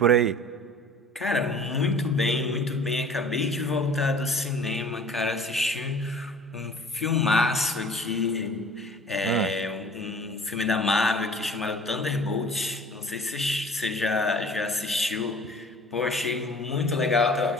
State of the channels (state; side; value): normal; both; correlation 0.47